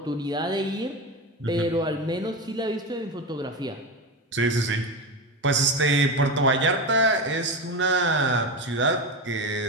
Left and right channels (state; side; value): normal; both; correlation 0.20